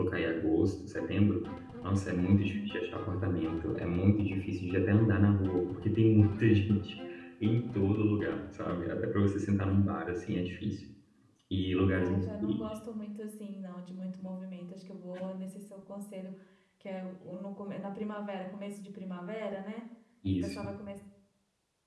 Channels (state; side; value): identical; both; correlation 1.00